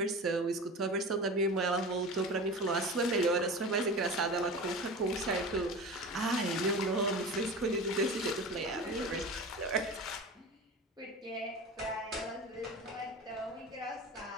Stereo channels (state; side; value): normal; both; correlation 0.32